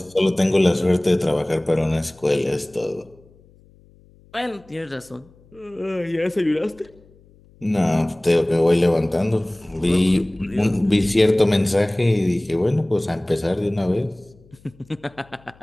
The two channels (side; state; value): left; noise; hum, 28 dB below the sound